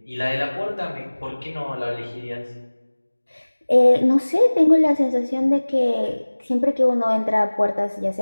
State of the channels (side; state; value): both; inverted; correlation -1.00